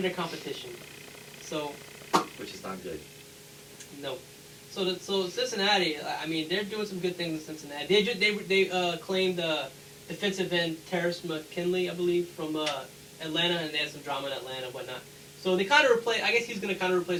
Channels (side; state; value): both; identical; correlation 1.00